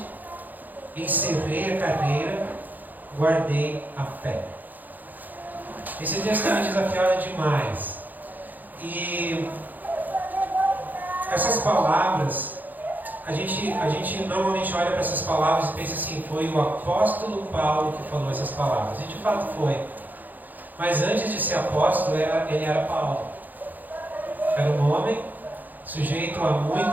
encerrei a carreira, guardei a fé. Esse texto tem me desafiado demais. E essas palavras, a gente normalmente olha para essas palavras e pensa assim: foi o apóstolo Paulo que falou essas palavras. E de fato foi. Mas antes de ser apóstolo, ele era Paulo. Era um homem sujeito a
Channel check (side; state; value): left; late; 0.084 ms